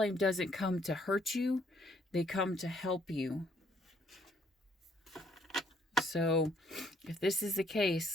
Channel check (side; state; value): both; normal; correlation 0.66